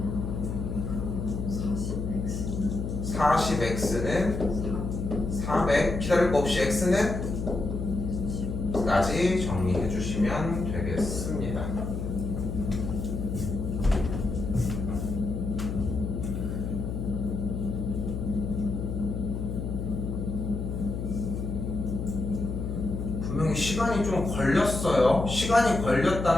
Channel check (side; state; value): left; noise; hum, 4 dB below the sound